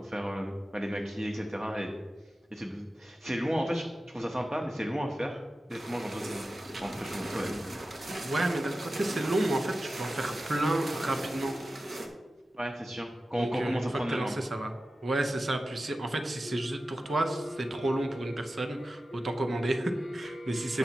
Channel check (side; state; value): both; normal; correlation 0.94